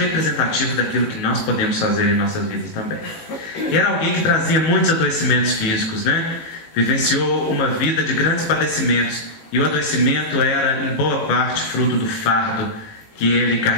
daquilo que nós podemos fazer em nossas vidas também. E era alguém que trazia muitos adoecimentos físicos, né? Vivenciou uma vida de grandes padecimentos, e o adoecimento era em boa parte fruto do fardo que ele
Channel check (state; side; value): late; right; 18 ms